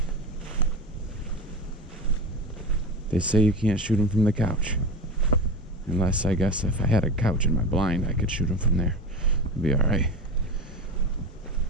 They say you can't shoot them from the couch. Unless, I guess, if I had a couch in my blind, I could shoot them from there. It'd be alright.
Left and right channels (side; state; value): both; normal; correlation 0.27